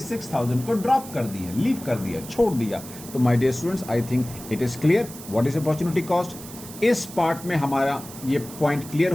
को ड्रॉप कर दिया, लीव कर दिया, छोड़ दिया। तो my dear students, I think it is clear what is opportunity cost. इस पार्ट में हमारा ये पॉइंट क्लियर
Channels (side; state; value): right; noise; hiss, 15 dB below the sound